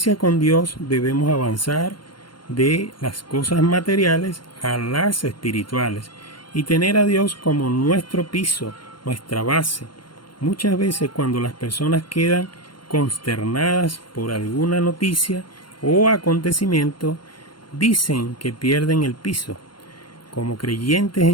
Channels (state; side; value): late; right; 0.72 ms